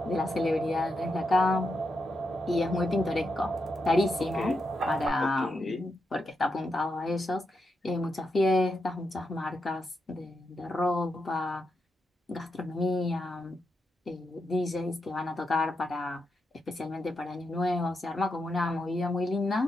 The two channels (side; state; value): both; normal; correlation 0.84